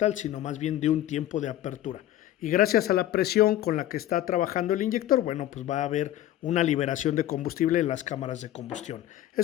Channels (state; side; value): quieter; right; 13.3 dB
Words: sino más bien de un tiempo de apertura. Y gracias a la presión con la que está trabajando el inyector, bueno, pues va a haber una liberación de combustible en las cámaras de combustión.